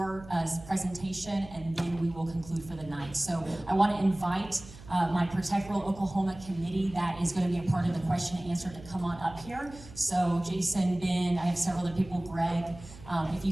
presentation, and then we will conclude for the night. So I want to invite my Protect Rural Oklahoma committee that is going to be a part of the question and answer to come on up here. So Jason, Ben, I have several other people, Greg. If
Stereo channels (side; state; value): right; noise; hum, 17 dB below the sound